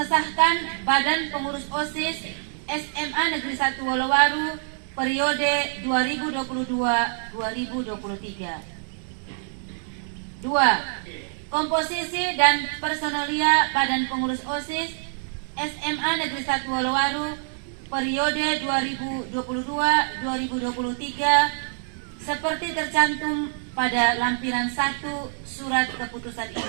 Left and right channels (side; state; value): left; silent; digital silence